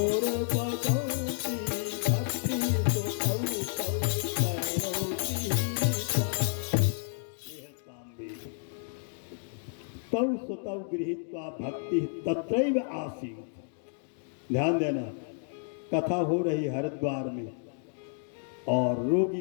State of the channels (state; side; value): silent; right; digital silence